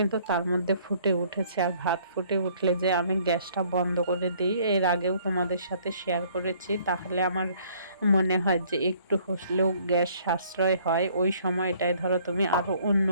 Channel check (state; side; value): inverted; both; correlation -0.60